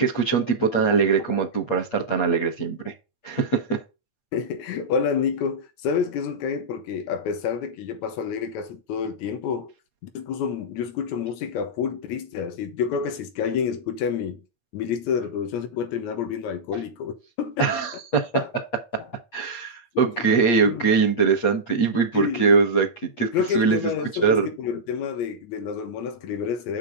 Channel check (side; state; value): right; late; 8.4 ms